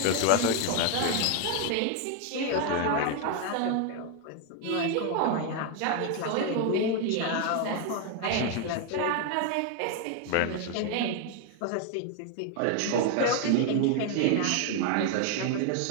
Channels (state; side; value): different; both; correlation 0.00